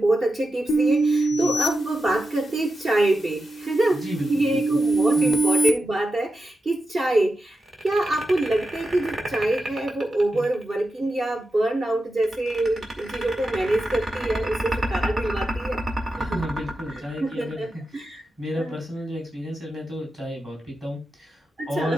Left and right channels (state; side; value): normal; both; correlation 0.90